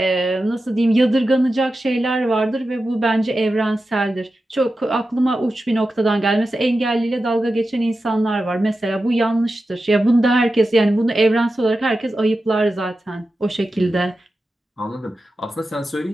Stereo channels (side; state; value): both; normal; correlation 0.92